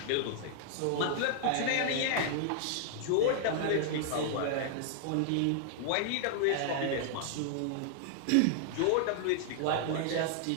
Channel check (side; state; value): both; different; correlation -0.01